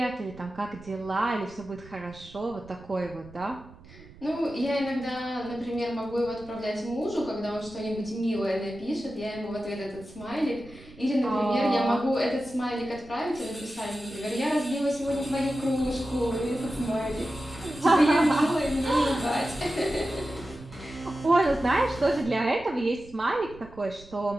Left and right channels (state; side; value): noise; right; rumble, 20 dB below the sound